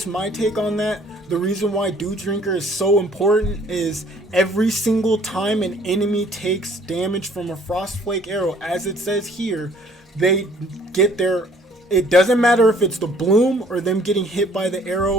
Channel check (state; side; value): normal; both; correlation 0.58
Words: my take on that. The reason why Dew Drinker is so important is every single time an enemy takes damage from a Frostflake arrow, as it says here, they get their, it doesn't matter if it's the bloom or them getting hit by the